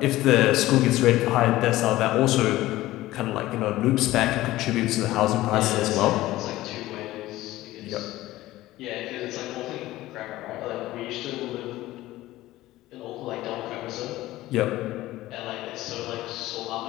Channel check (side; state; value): right; quieter; 16.6 dB